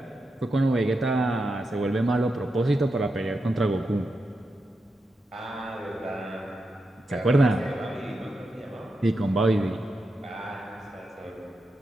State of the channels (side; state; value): both; normal; correlation 0.87